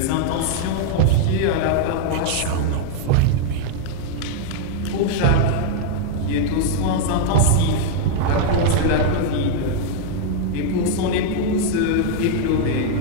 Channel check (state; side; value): different; both; correlation -0.01